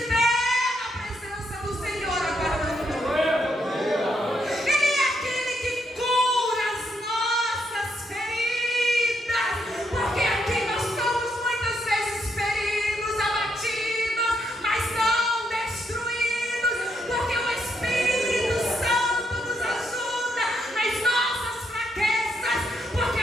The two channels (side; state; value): both; normal; correlation 0.77